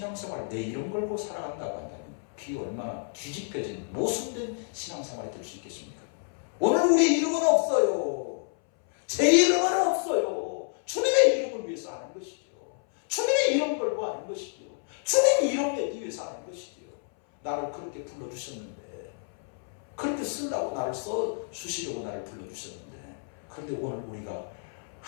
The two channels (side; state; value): right; silent; 58 dB below the other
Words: 내 이름 걸고 살아간다고 한다면 비 얼마나 뒤집혀진 모순된 신앙생활이 될 수 있겠습니까? 오늘 우리 이름은 없어요. 제 이름은 없어요. 주님의 이름을 위해서 하는 것이죠. 주님의 이름 걸고 하는 것이죠. 주님의 이름 내기 위해서 하는 것이죠. 나를 그렇게 불러주셨는데, 그렇게 쓰려고 나를 써주시려고 나를 불러주셨는데, 그런데 오늘 우리가